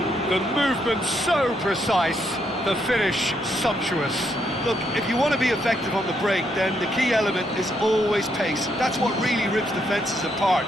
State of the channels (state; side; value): normal; both; correlation 0.76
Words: The movement so precise, the finish sumptuous. Look, if you want to be effective on the break, then the key element is always pace. That's what really rips defences apart.